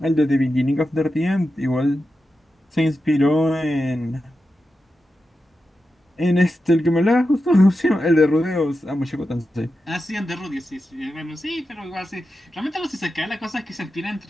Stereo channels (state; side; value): normal; both; correlation 0.90